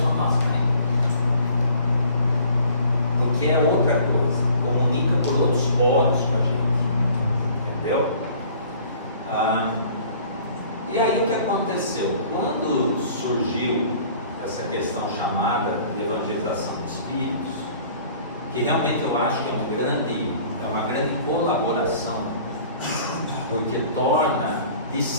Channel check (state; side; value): inverted; both; correlation -0.52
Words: fala, nossa, porque é outra coisa, comunica por outros poros com a gente, entendeu? E aí o que aconteceu? Quando surgiu essa questão chamada de evangelização dos espíritos, que realmente eu acho que é uma grande colaboração, porque torna,